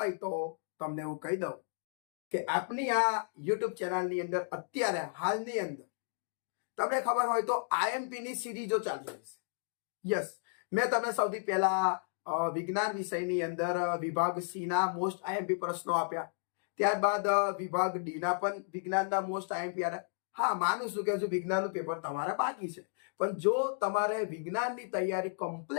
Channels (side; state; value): right; silent; digital silence